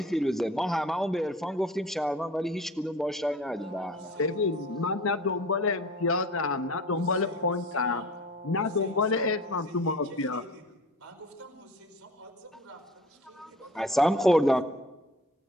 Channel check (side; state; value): both; normal; correlation 0.41